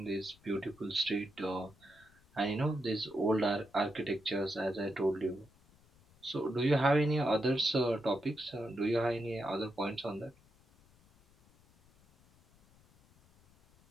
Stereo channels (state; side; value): noise; left; rumble, 29 dB below the sound